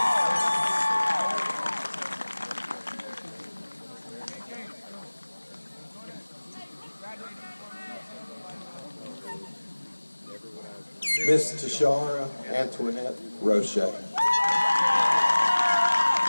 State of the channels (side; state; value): both; inverted; correlation -1.00